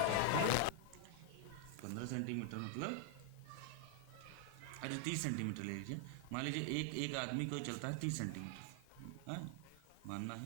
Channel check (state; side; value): different; both; correlation 0.00